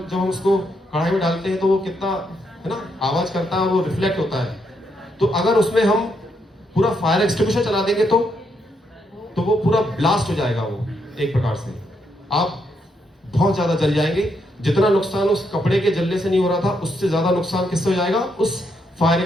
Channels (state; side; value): normal; both; correlation 0.78